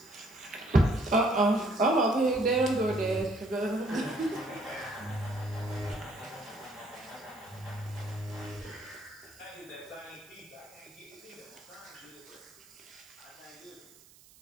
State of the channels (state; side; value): noise; right; hiss, 24 dB below the sound